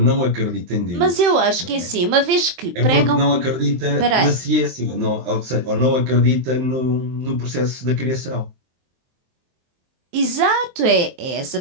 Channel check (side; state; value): left; late; 23 ms